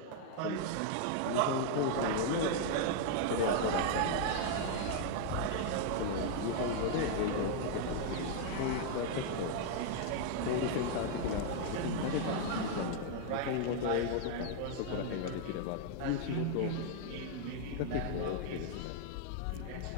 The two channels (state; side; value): different; both; correlation 0.00